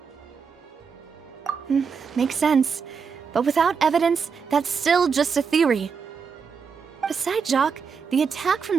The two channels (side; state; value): left; quieter; 6.0 dB